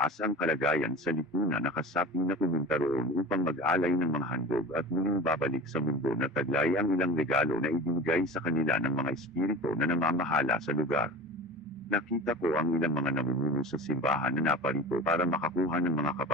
ang kalagayan sa lipunan na kasapi na pumunta roon upang mag-alay ng mga handog at muling babalik sa mundo na taglay ang ilang regalo na ibinigay sa kanila ng mga espiritu na namamahala sa lugar. Nakita ko ang ilang mga namumuno sa simbahan na naparito para makakuha ng mga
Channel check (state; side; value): normal; both; correlation 0.35